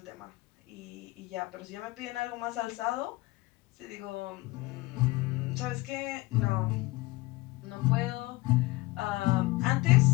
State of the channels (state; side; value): quieter; right; 21.3 dB